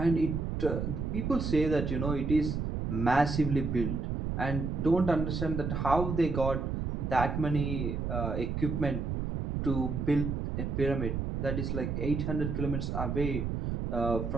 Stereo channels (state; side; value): noise; right; rumble, 2 dB below the sound